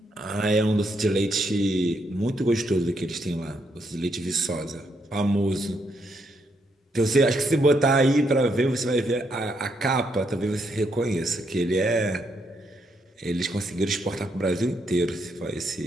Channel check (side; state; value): both; normal; correlation 0.76